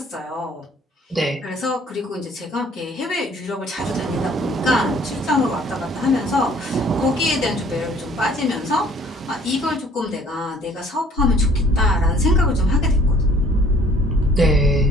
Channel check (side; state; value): both; normal; correlation 0.56